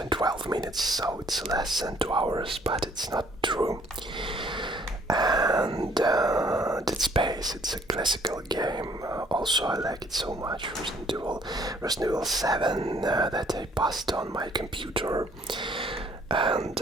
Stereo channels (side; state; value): both; normal; correlation 0.61